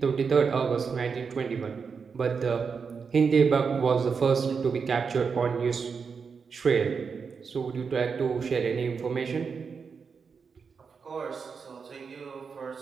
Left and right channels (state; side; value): quieter; left; 5.7 dB